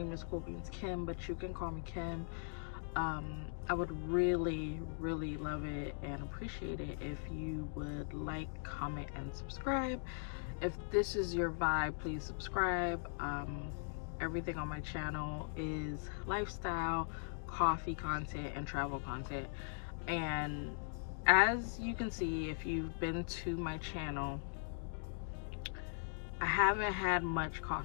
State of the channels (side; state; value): right; silent; digital silence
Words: is Cool Beans Kim, but you can call me Kim. I would really love it and appreciate it if you would like, comment, and subscribe. If this is your vibe, please subscribe. Everything on my channel is lifestyle, coffee content, and travel content. And as you can see, if you've been to my channel, I haven't had much